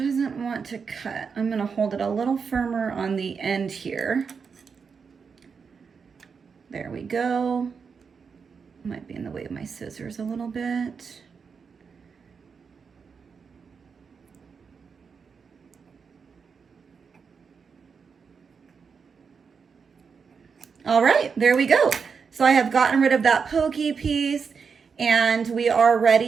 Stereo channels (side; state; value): left; quieter; 5.8 dB